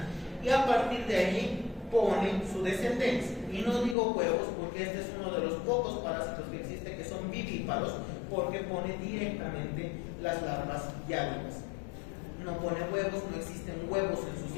y a partir de allí pone su descendencia. Y no digo huevos porque este es uno de los pocos parásitos que existe que son vivíparos, porque pone directamente las larvas ya vivas. No pone huevos, no existen huevos en su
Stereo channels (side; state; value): right; drops out; at 4.0 s